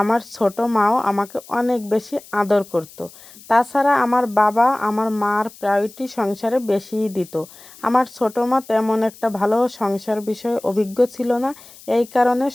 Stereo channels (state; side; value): noise; left; hiss, 21 dB below the sound